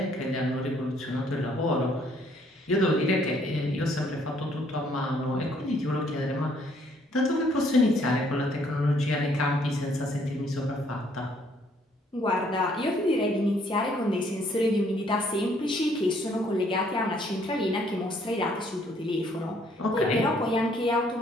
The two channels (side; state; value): both; normal; correlation 0.65